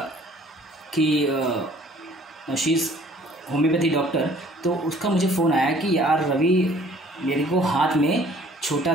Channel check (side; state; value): both; normal; correlation 0.55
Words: कि शी इज़ होम्योपैथी डॉक्टर। तो उसका मुझे फ़ोन आया कि यार रवि, मेरे को हाथ में छोटा